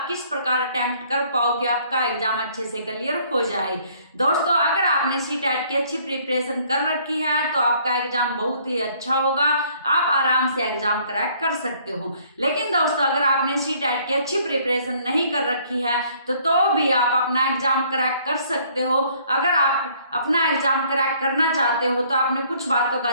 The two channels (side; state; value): both; inverted; correlation -0.61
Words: किस प्रकार अटेम्प्ट कर पाओ कि आपका एग्जाम अच्छे से क्लियर हो जाए। दोस्तों, अगर आपने सीटेट की अच्छी प्रिपरेशन कर रखी है तो आपका एग्जाम बहुत ही अच्छा होगा, आप आराम से एग्जाम क्रैक कर सकते हो। लेकिन दोस्तों, अगर आपने सीटेट की अच्छी प्रिपरेशन नहीं कर रखी है तो भी आप अपना एग्जाम क्रैक कर सकते हो। अगर आप अपना एग्जाम क्रैक करना चाहते हो तो आपने कुछ बातों का